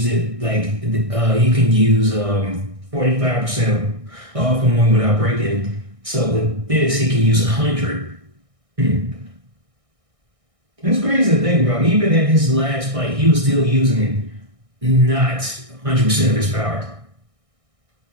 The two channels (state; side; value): late; left; 1.6 ms